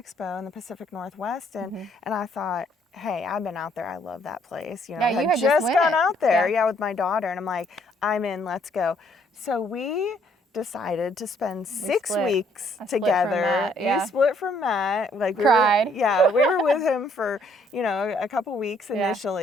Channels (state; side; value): normal; both; correlation 0.66